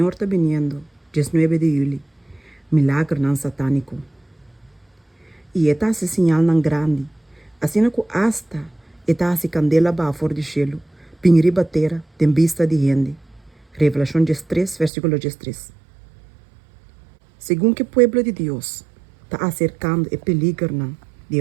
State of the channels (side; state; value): left; drops out; at 14.9 s